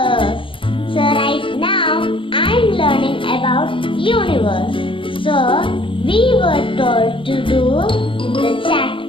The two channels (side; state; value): right; late; 0.25 ms